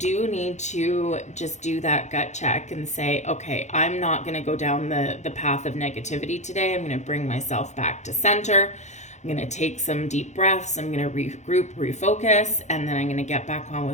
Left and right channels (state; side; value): late; right; 0.34 ms